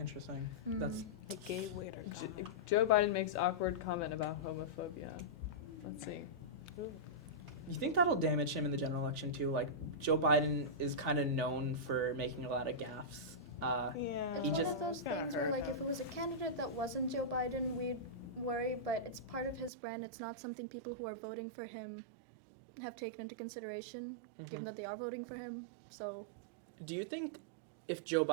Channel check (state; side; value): drops out; left; at 19.7 s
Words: Mm. That's The gay waiter. Joe Biden makes awkward comment about homophobia. Let's see. You think that'll damage him in the general election too? Like Joe Biden is kind of known for making a lot of gaffes. Yeah. It's He one just- of those Kinda things where, hurt like, if him. it was a candidate that wasn't Joe Biden, we'd worry, but it's part of his brand. It's not something people who are voting for him have taken into consideration, given Mhm. that they are voting for him. So, Do you think if Joe